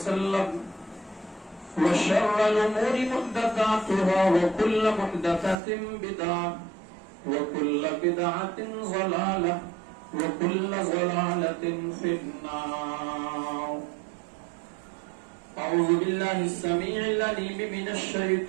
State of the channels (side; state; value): left; drops out; at 5.6 s